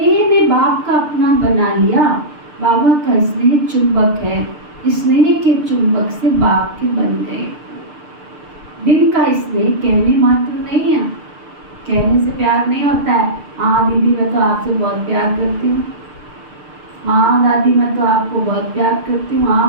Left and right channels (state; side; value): late; left; 6.7 ms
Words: ने बाप का अपना बना लिया। बाबा का स्नेह चुंबक है, स्नेह के चुंबक से बाप के बन गए। दिल का स्नेह कहने मात्र नहीं है, कहने से प्यार नहीं होता है। हाँ दीदी मैं तो आपसे बहुत प्यार करती हूँ, हाँ दादी मैं तो आपको बहुत प्यार करती हूँ,